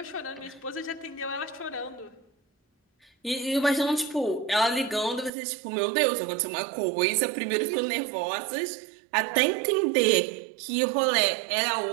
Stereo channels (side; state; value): left; drops out; at 5.3 s